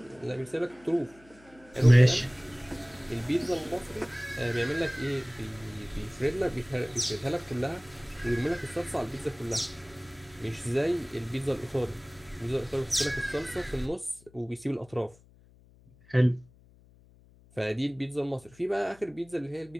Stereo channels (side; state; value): left; noise; hum, 26 dB below the sound